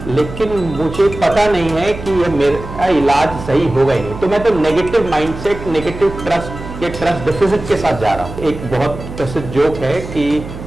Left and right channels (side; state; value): right; noise; hum, 11 dB below the sound